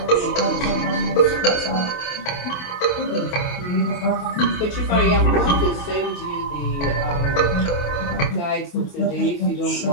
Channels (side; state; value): right; late; 28 ms